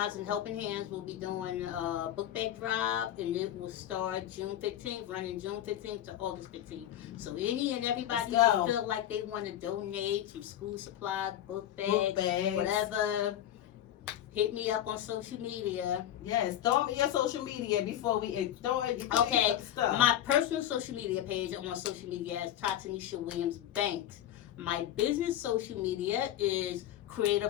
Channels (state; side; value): quieter; right; 11.8 dB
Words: and Helping Hands will be doing a book bag drive, and it will start June 15th, running June 15th to August 15th. So any and everybody who feel like they want to donate some school supplies, book bags, whatever, hit me up on social media. Yes, throw me your social media before we throw it. Okay, my personal social media page on social media is Tatanisha Williams Banks. My business social media is